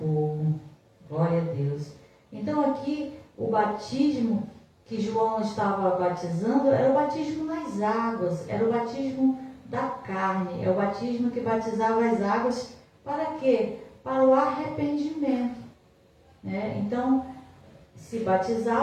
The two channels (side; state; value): both; identical; correlation 1.00